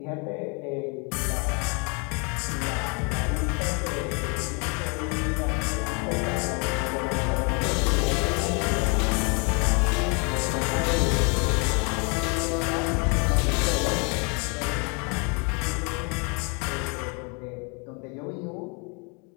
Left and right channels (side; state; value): right; quieter; 33.9 dB